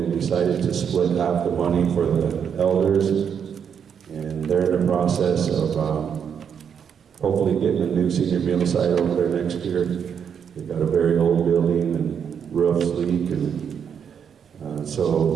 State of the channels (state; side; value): quieter; left; 7.6 dB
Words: decided to split half the money for the elders, and they're in the process of hopefully getting a new senior meal site over there next year. They've got a very old building and roofs leak, and